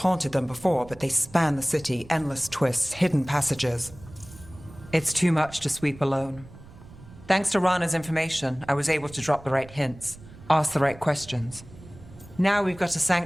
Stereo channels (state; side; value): noise; right; rumble, 19 dB below the sound